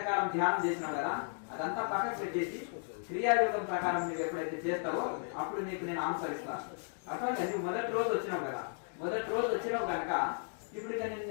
ధ్యానం చేసినావు కదా, అదంతా పక్కకు పెట్టేసి క్రియాయోగం ప్రకారం నువ్వు ఎప్పుడైతే చేస్తావో అప్పుడు నీకు నేను ఆన్సర్ ఇస్తాను. అట్లా నువ్వు మొదటి రోజు వచ్చినావు కదా, మొదటి రోజు వచ్చినావు కనుక ఇప్పుడు ఇక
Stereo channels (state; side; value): silent; right; 55 dB below the other